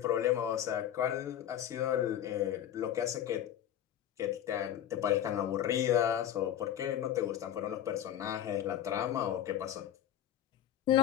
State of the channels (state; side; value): quieter; right; 10.9 dB